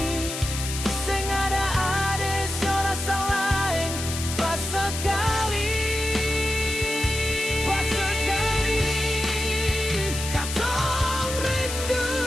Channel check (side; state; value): left; noise; hiss, 6 dB below the sound